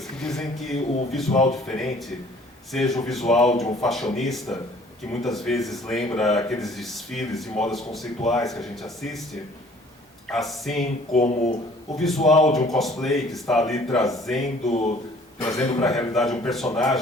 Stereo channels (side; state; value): both; normal; correlation 0.54